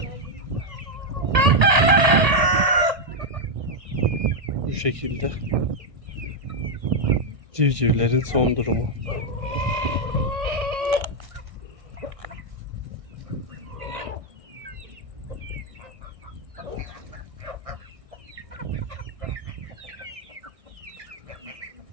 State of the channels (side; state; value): left; late; 1.8 ms